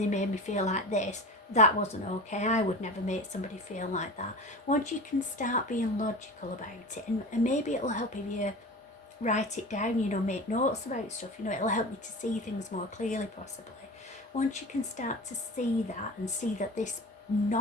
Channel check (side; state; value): both; normal; correlation 0.32